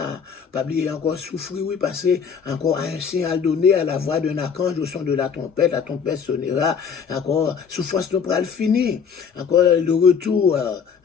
oublier encore souffrir, oui, passer encore à un signal donné à la voix d'un archange au son de la trompette sonnera, encore, souffrance nous pourra le finir, encore le retour,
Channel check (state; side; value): quieter; right; 6.6 dB